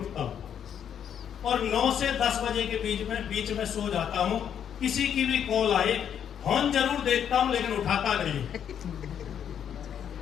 हूँ और 9 से 10 बजे के बीच में सो जाता हूँ। किसी की भी कॉल आए, फोन जरूर देखता हूँ लेकिन उठाता नहीं।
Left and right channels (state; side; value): quieter; right; 8.8 dB